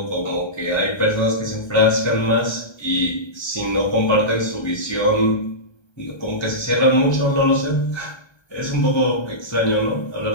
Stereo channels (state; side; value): late; right; 1.3 ms